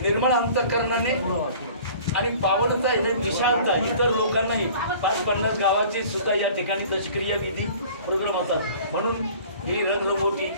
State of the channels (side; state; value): both; inverted; correlation -0.47